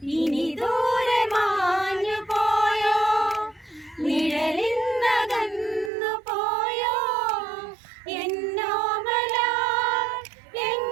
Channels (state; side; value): drops out; left; at 5.9 s